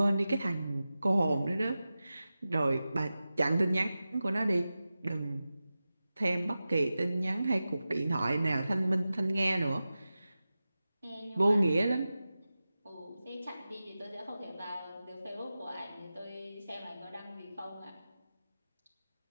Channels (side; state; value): both; inverted; correlation -0.94